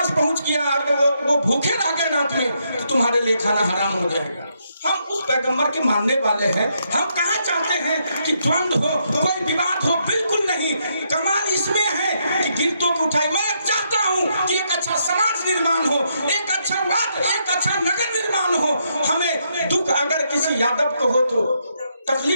पहुंच गया और वो भूखे रह गए रात में तो तुम्हारे लिए खाना हराम हो जाएगा। हम उस पैगंबर के मानने वाले हैं। हम कहाँ चाहते हैं कि द्वंद्व हो, कोई विवाद हो, बिल्कुल नहीं। कमाल इसमें है कि गिरतों को उठाई। मैं चाहता हूँ कि एक अच्छा समाज निर्माण हो, एक अच्छा वाद, एक अच्छा नगर निर्माण हो। हमें दुख अगर किसी यादव को हो तो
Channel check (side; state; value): both; inverted; correlation -0.77